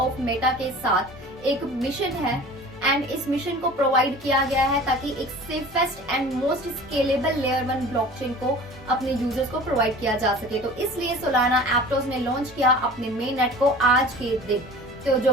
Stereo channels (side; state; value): both; normal; correlation 0.42